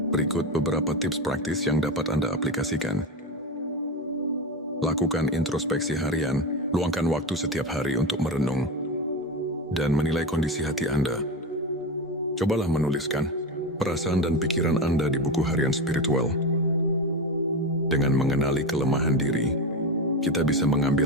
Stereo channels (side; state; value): both; normal; correlation 0.19